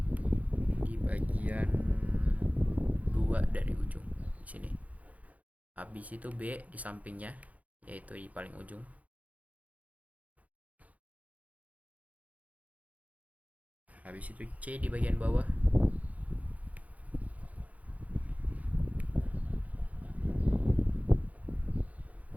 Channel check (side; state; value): left; late; 0.071 ms